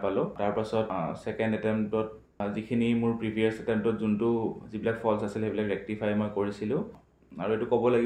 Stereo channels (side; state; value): both; identical; correlation 1.00